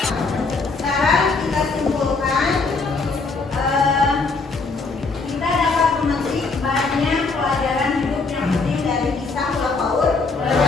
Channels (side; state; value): right; quieter; 4.1 dB